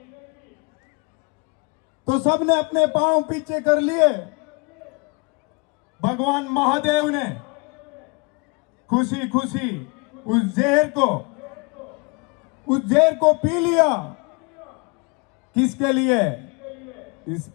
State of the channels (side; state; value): right; quieter; 30.0 dB